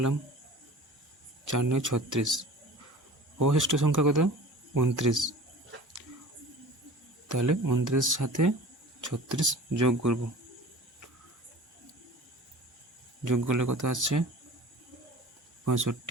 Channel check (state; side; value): normal; both; correlation 0.40